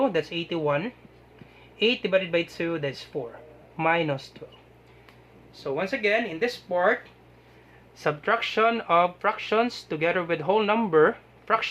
that's 81. 8 divided by 2, that's 4. Minus 12. So once again, in this part, subtraction of fractions together with whole number,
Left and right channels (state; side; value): identical; both; correlation 1.00